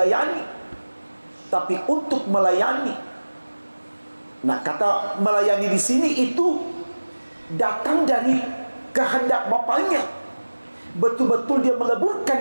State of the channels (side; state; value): both; inverted; correlation -1.00